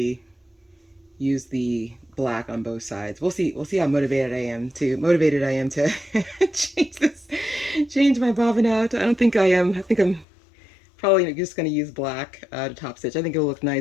use the black on both sides. We'll see how motivated I am to change my bobbin out. I don't think I am. I think I'm probably just going to use black to top stitch. I think it'll look nice,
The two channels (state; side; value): drops out; right; at 10.2 s